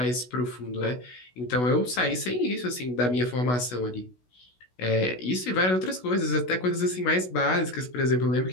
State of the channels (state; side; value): late; right; 16 ms